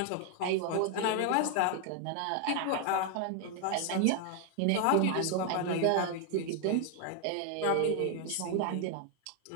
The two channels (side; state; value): both; different; correlation 0.00